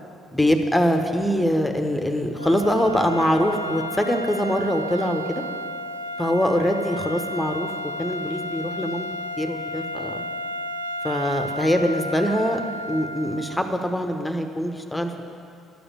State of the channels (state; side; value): normal; both; correlation 0.75